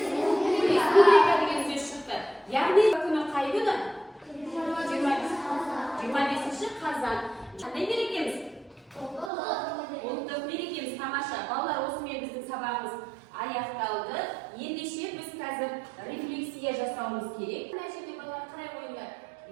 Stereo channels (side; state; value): left; drops out; at 9.3 s